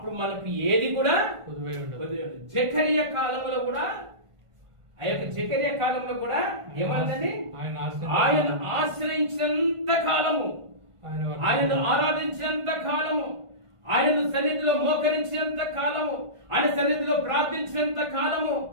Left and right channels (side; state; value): left; late; 1.5 ms